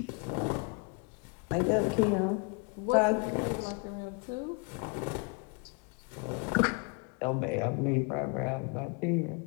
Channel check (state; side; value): quieter; right; 33.2 dB